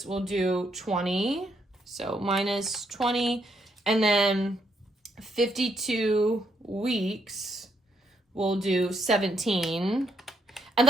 we'll do 20. So minus 20, and then 52 weeks, we'll do 17. And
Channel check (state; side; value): normal; both; correlation 0.74